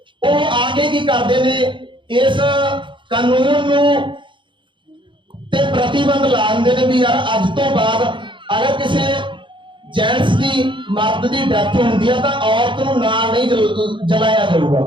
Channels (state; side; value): late; left; 0.24 ms